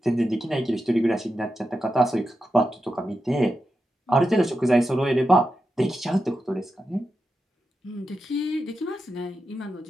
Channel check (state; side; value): normal; both; correlation 0.89